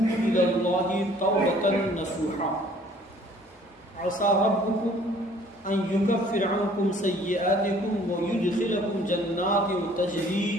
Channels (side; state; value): both; normal; correlation 0.56